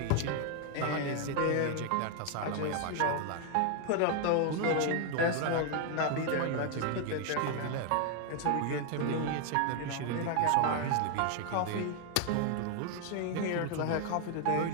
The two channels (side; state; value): both; different; correlation 0.00